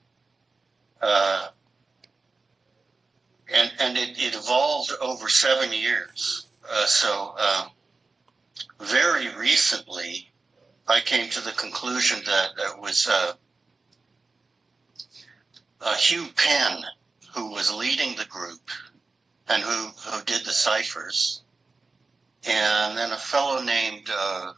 And it evolved over 7 years. So very recently, I came to the conclusion that it was Hugh Penn who was leading the group and who did the ciphers. and then a fellow named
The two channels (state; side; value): quieter; left; 3.9 dB